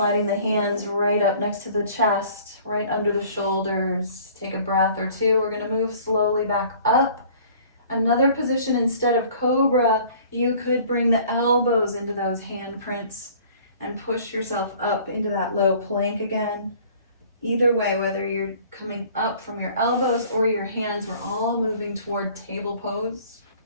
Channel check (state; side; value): inverted; both; correlation -0.51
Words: the hands right up next to the chest, right under the shoulders. Take a breath or two. We're going to move slowly back up. Another position, instead of cobra, you could bring the elbows into those handprints and push yourself up into that low plank again. Either way, whether you're coming up from your elbows or your hands, we're all moving toward table pose.